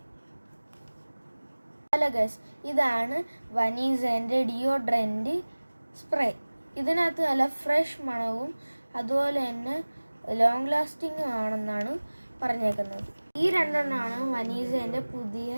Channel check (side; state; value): both; inverted; correlation -1.00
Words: ഹലോ ഗൈസ്, ഇതാണ് വനീസന്റെ ഡിയോഡ്രന്റ് സ്പ്രേ. ഇതിനകത്ത് നല്ല ഫ്രഷ് മണവും അതുപോലെ തന്നെ ലോങ് ലാസ്റ്റിംഗും ആണെന്നാണ് പറഞ്ഞേക്കുന്നത്. ഈ രണ്ടെണ്ണമാണ് വനീസന്റെ പുതിയ